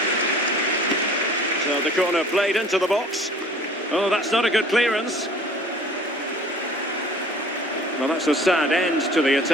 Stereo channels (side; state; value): both; normal; correlation 0.49